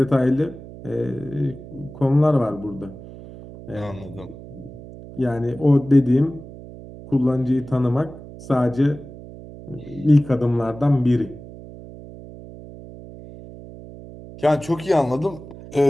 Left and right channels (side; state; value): right; noise; hum, 16 dB below the sound